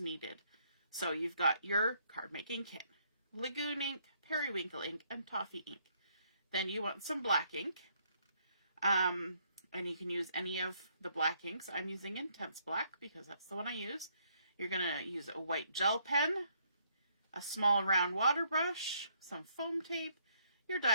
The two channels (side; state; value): both; inverted; correlation -0.70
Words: So you've got your card making kit, Lagoon ink, periwinkle ink, and Toffee ink. Then you want some black ink. And you can use any of the black inks. I'm using Intense Black because that's the one I use. You're going to use a white gel pen, a small round water brush, some foam tape, your